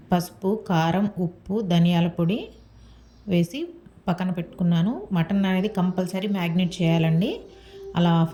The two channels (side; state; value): both; identical; correlation 1.00